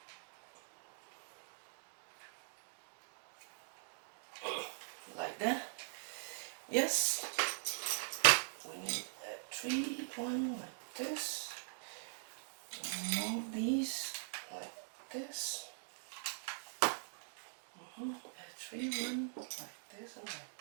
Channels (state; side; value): silent; left; digital silence